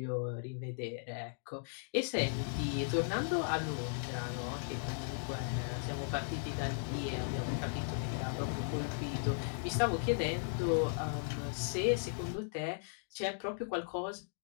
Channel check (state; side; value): silent; right; digital silence